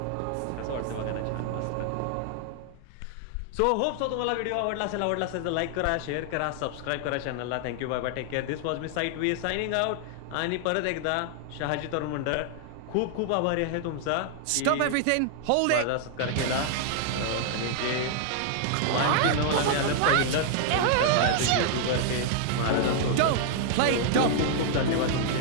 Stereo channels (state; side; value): different; both; correlation 0.00